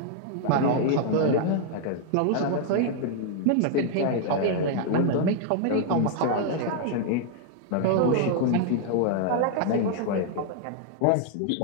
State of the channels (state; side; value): different; both; correlation 0.00